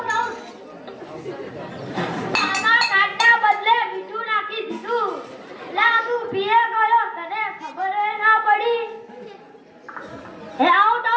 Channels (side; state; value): both; identical; correlation 1.00